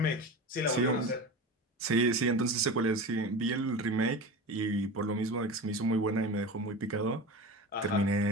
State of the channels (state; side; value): normal; both; correlation 0.29